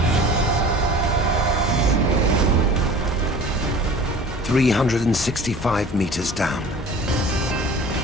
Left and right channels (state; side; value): normal; both; correlation 0.42